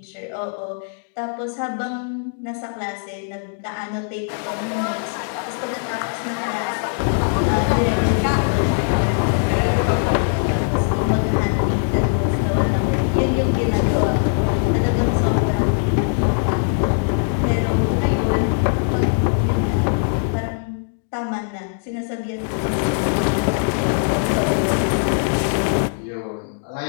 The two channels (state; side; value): silent; right; digital silence